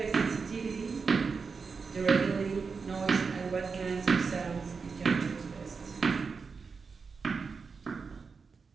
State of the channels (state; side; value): quieter; left; 5.1 dB